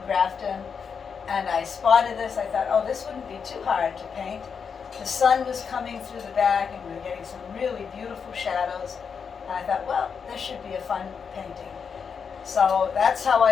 Grafton, and I spotted this. I thought, oh, this wouldn't be too hard to paint. The sun was coming through the back, and we were getting some really beautiful shadows. And I thought, well, this should be a fun painting. So that's how I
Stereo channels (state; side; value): quieter; right; 6.3 dB